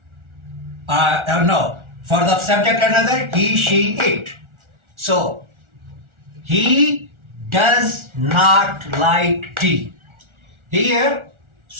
No. For the subject another, he, she, it. So, he does not like tea. Here,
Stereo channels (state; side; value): late; left; 1.4 ms